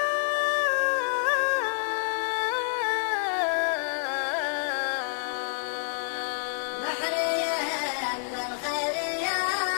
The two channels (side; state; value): right; silent; 57 dB below the other